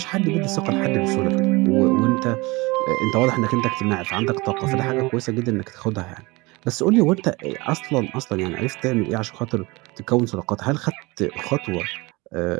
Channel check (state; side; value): quieter; left; 24.1 dB